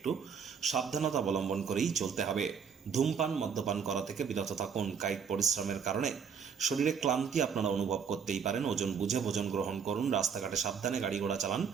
সাবধানতা অবলম্বন করেই চলতে হবে। ধূমপান, মদ্যপান করা থেকে বিরত থাকুন। কায়িক পরিশ্রমের কারণে শরীরে ক্লান্তি আপনারা অনুভব করতেই পারেন। ওজন বুঝে ভোজন গ্রহণ করুন। রাস্তাঘাটে সাবধানে গাড়ি ঘোড়া চালান।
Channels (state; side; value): quieter; left; 6.8 dB